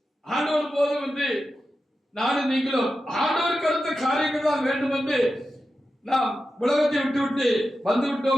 ஆண்டவர் போதும் என்று நானும் நீங்களும் ஆண்டவருக்கு அடுத்த காரியங்கள் தான் வேண்டும் என்று நாம் உலகத்தை விட்டு வந்து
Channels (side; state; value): both; normal; correlation 0.91